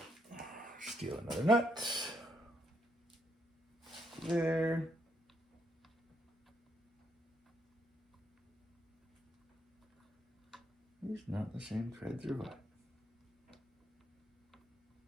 steal another nut. There. These not the same threads or what?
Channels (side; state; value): both; normal; correlation 0.75